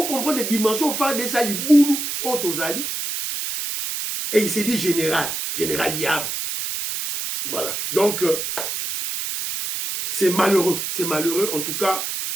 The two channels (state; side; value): noise; right; hiss, 4 dB below the sound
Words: comprenez les dimensions FARDC Zali Boulou Otozali. Et il s'est dit général Yav. Voilà. Donc, c'est malheureux. C'est malheureux. En tout cas,